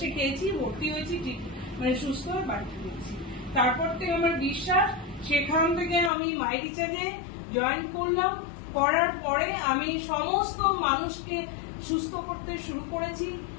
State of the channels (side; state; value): right; drops out; at 6.1 s